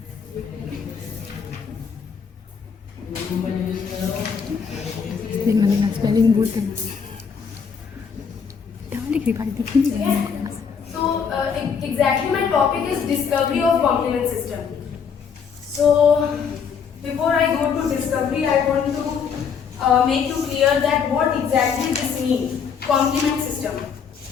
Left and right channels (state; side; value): quieter; right; 6.5 dB